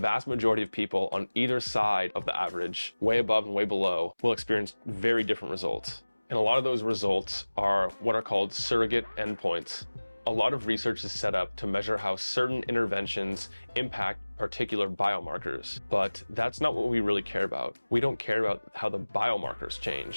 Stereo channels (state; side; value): inverted; both; correlation -1.00